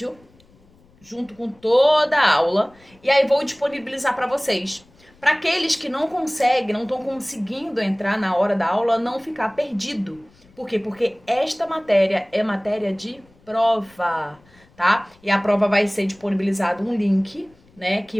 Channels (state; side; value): noise; left; rumble, 30 dB below the sound